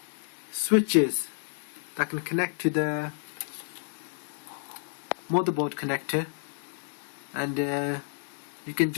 switches that can connect to the motherboard connector, and you can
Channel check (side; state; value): right; silent; digital silence